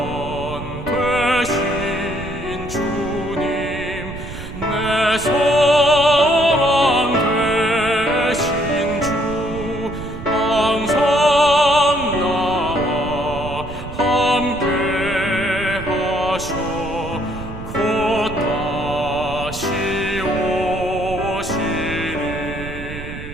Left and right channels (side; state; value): right; noise; rumble, 10 dB below the sound